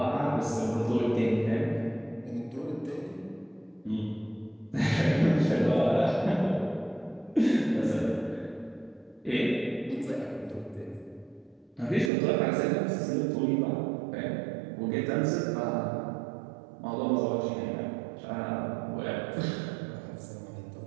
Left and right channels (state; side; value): drops out; left; at 12.1 s